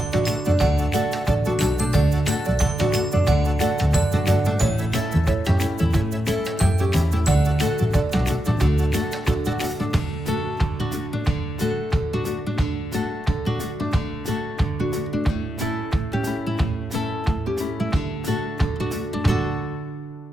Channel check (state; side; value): normal; both; correlation 0.86